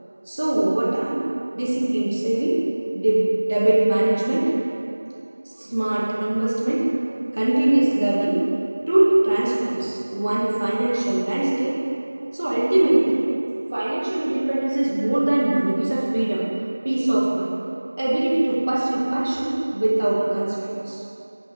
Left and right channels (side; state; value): both; inverted; correlation -1.00